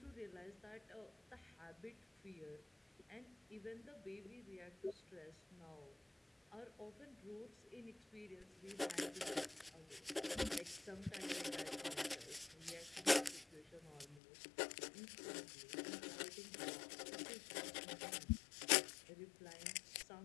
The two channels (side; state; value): right; drops out; at 14.2 s